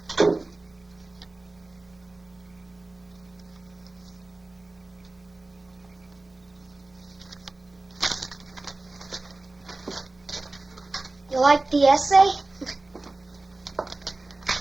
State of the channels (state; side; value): quieter; left; 3.1 dB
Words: You like the essay?